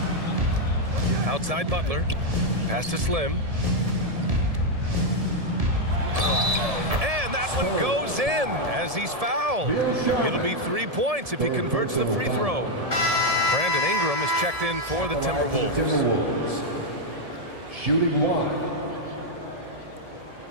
Outside Butler. Pass to Slim. And that one goes in as he's fouled. It'll be 3 points if he converts the free throw. Brandon Ingram is checked in for the Timberwolves. Shooting 1.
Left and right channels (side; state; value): left; late; 1.7 ms